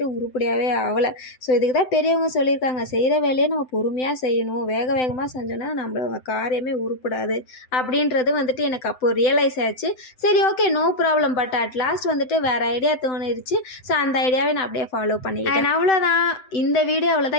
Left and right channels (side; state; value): right; late; 7.8 ms